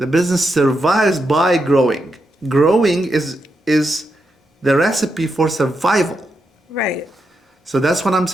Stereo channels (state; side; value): normal; both; correlation 0.84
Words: business survives by growing. Growing is the recipe for survival. Right. So that's what I'm